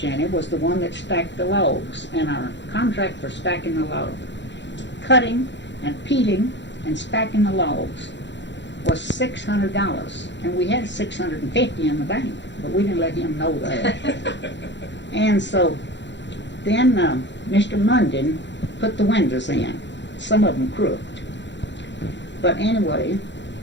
was the one that stacked the logs, and our contract for stacking the logs, cutting and peeling and stacking the logs was $600, and we had $650 in the bank, but we didn't let him know that. And so then Mr. Munden put the windows in, some of them crooked. But anyway,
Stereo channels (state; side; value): late; right; 0.52 ms